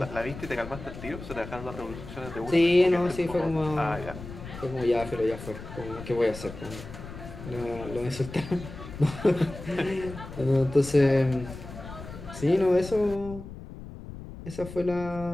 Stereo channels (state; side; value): noise; left; rumble, 12 dB below the sound